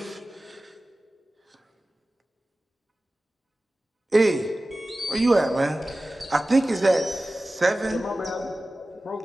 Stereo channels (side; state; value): both; normal; correlation 0.96